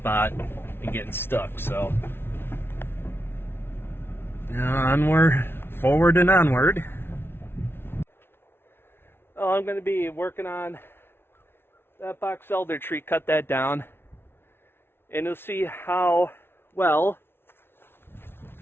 and getting stuck. So onward, forward and onward. Oh, I'm going to be working on that box elder tree, cut that down, and you'll see how well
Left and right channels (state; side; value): late; right; 0.11 ms